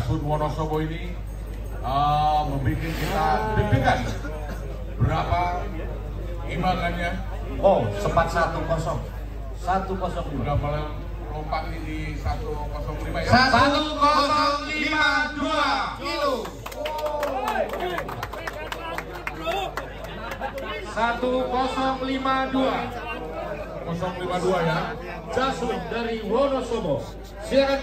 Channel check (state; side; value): identical; both; correlation 1.00